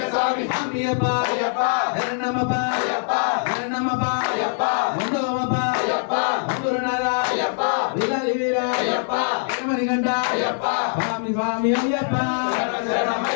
అయ్యప్ప అయ్యప్ప శరణమప్ప అయ్యప్ప శరణమప్ప అయ్యప్ప ముందోమప్ప అయ్యప్ప గురునాథ అయ్యప్ప విలాలి వీర అయ్యప్ప ఏమనిగంట అయ్యప్ప స్వామి స్వామి అయ్యప్ప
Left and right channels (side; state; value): right; silent; digital silence